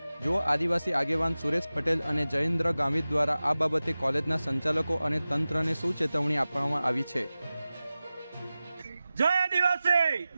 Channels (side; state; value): both; inverted; correlation -0.96